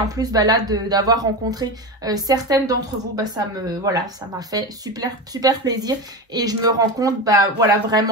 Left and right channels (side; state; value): both; normal; correlation 0.21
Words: plus, ben là, d'avoir rencontré certaines d'entre vous, ben ça m'a fait super plaisir. Et je me rends compte, ben voilà,